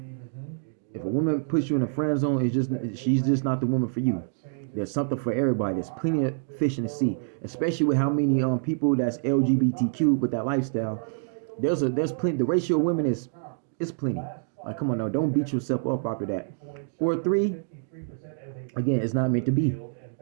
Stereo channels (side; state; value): left; silent; digital silence